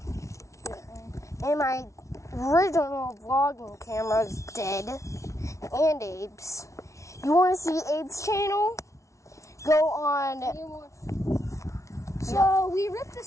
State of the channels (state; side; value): late; right; 0.14 ms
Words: And my original vlogging camera is dead. And Abe's. You want to see Abe's channel? Go on. So we ripped